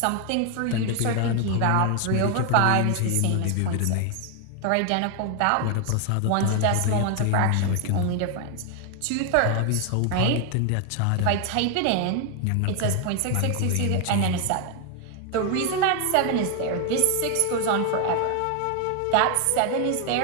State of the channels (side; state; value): both; different; correlation 0.00